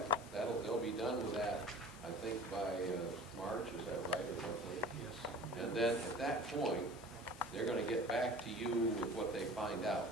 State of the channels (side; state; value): left; noise; hiss, 20 dB below the sound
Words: they'll be done with that, I think, by March, is that right, or roughly? Yes. And then at that point, they're going to get back to you with what they find out.